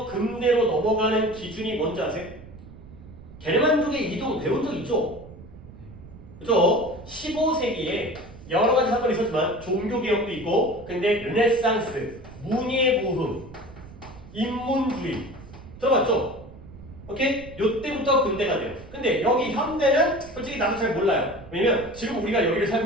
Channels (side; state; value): right; noise; rumble, 18 dB below the sound